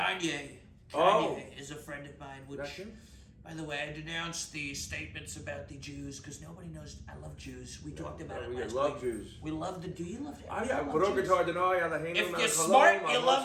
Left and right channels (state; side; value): identical; both; correlation 1.00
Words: Oh. Kanye is a friend of mine. That's Which, him? by the way, I denounced the statements about the Jews because nobody knows. I love Jews. We talked about it we last love week. Jews. We love the. Do you love? Ah, you yeah. love Puro Jews? guitar deny. If you're smart, you